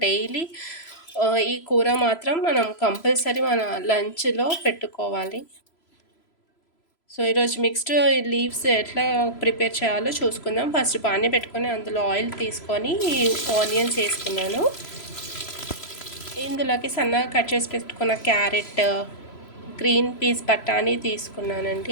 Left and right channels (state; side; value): late; right; 3.0 ms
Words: డైలీ ఈ కూర మాత్రం మనం కంపల్సరీ మన లంచ్‌లో పెట్టుకోవాలి. సో, ఈరోజు మిక్స్డ్ లీవ్స్ ఎట్లా ప్రిపేర్ చేయాలో చూసుకుందాం. ఫస్ట్ పానీ పెట్టుకొని అందులో ఆయిల్ తీసుకొని ఆనియన్స్ వేసుకున్నాను. ఇందులోకి సన్నగా కట్ చేసి పెట్టుకున్న క్యారెట్, గ్రీన్ పీస్, బఠానీ